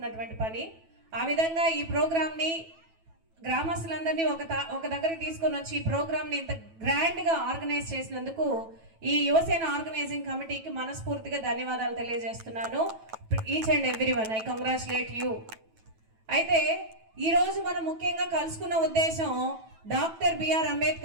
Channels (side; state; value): left; late; 9.1 ms